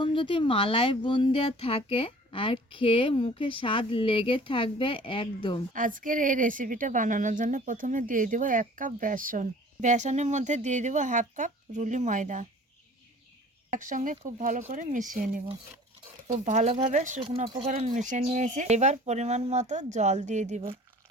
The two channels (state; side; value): normal; both; correlation 0.48